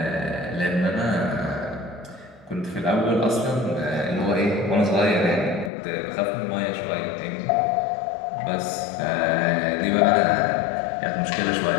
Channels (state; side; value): drops out; right; at 5.7 s